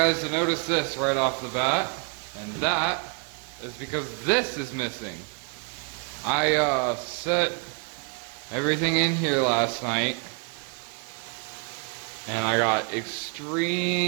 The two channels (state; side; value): quieter; left; 35.9 dB